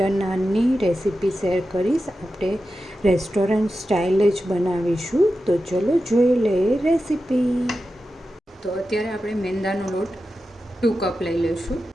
નાનની રેસીપી શેર કરીશ. આપણે રેસ્ટોરન્ટ સ્ટાઇલ જ બનાવીશું. તો ચલો જોઈ લઈએ રેસીપી. તો અત્યારે આપણે મેંદાનો લોટ 2 કપ લઈ લઈશું.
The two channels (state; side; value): normal; both; correlation 0.91